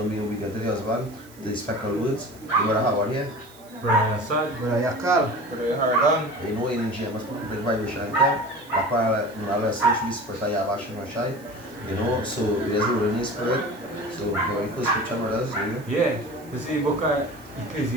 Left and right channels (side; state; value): right; noise; hiss, 24 dB below the sound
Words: be obedient to the husband, the spectral words. The brother Howard here. Brother Assad, Brother Yakal, Brother Hardan. You know, in James, the vibration camp, that's why I listen to the spirit of Yahweh. You know, so there's a Holy Spirit. So, going first scripture, brothers, you know? Yeah, this is the book of